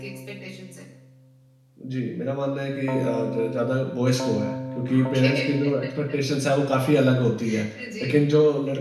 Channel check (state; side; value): identical; both; correlation 1.00